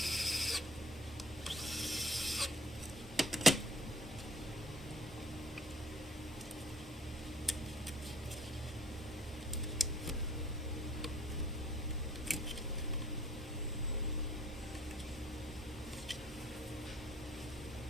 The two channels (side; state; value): both; normal; correlation 0.57